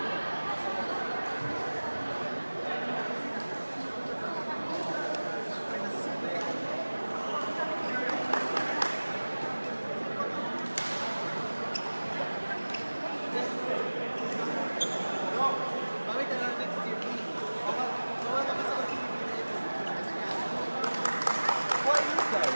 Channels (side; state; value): both; inverted; correlation -1.00